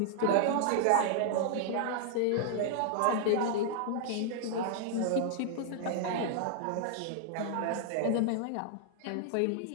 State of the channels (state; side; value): different; both; correlation -0.01